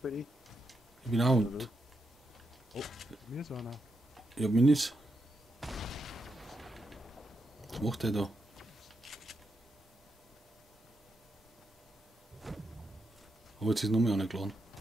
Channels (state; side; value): normal; both; correlation 0.84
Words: bei dir? Ich bin auch unten. Mir ist einer. Ich hab Minis. Was macht der da? Aber jetzt ist noch mehr angeladen.